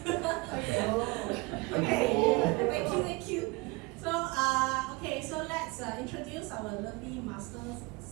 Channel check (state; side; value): quieter; left; 25.0 dB